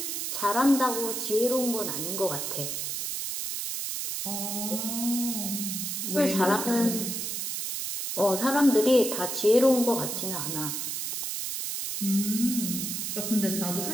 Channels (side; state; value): right; noise; hiss, 3 dB below the sound